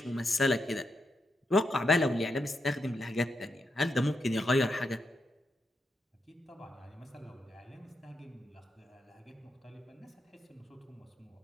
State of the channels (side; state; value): both; normal; correlation 0.84